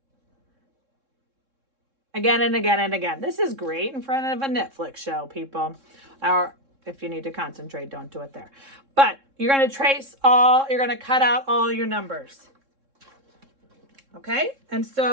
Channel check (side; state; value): left; late; 3.7 ms